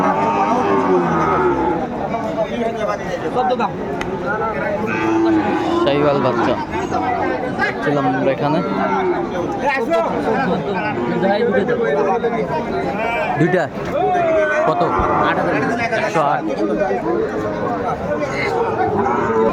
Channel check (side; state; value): both; identical; correlation 1.00